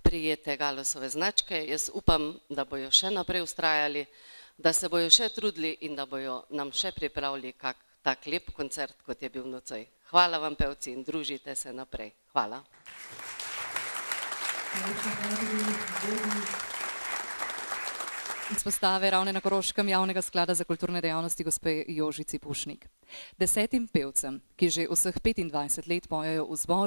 Galosove značke. Jaz upam, da bojo še naprej vztrajali, da se bojo še trudili in da bojo nam še pripravili kak tak lep koncert, kot je bil nocoj. Hvala vam, pevci, in družite se naprej. Hvala. Izpostave Ravne na Koroškem javnega sklada za kulturne dejavnosti gospe Jožici Pušnik. 10 pevcem, ki že vseh 25 let pojejo v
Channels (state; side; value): inverted; both; correlation -1.00